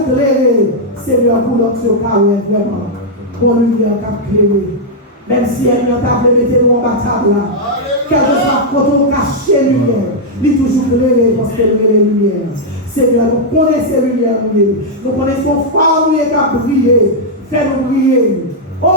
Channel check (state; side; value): normal; both; correlation -0.04